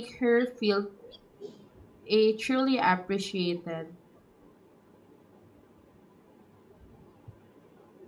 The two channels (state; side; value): identical; both; correlation 1.00